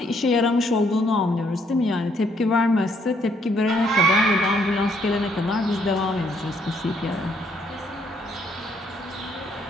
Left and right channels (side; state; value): both; normal; correlation 0.69